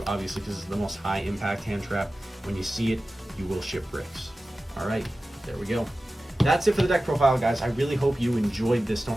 obviously, because it's the most high-impact hand trap. When you see it, you will ship bricks. All right, there we go. That's it for the deck profile, guys. I really hope you enjoyed this. Don't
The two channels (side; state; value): both; normal; correlation 0.95